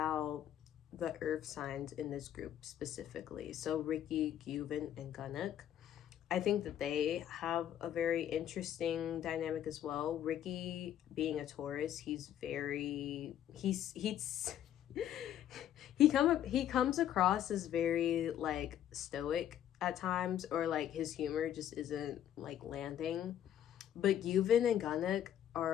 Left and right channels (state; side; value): quieter; right; 10.8 dB